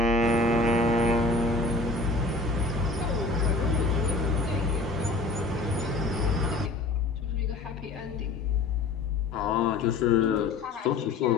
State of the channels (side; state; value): right; quieter; 3.3 dB